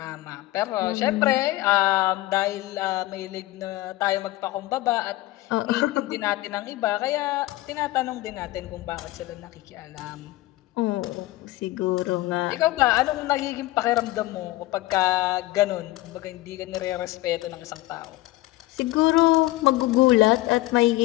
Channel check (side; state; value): right; quieter; 17.8 dB